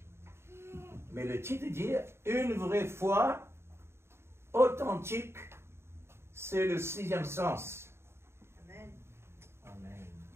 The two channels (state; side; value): late; left; 0.12 ms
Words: Mais le titre dit une vraie foi authentique, c'est le 6e sens. Amen. Amen.